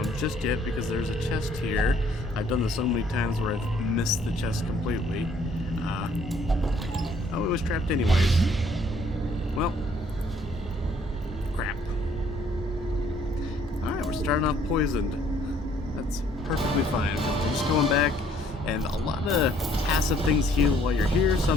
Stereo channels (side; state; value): both; normal; correlation 0.62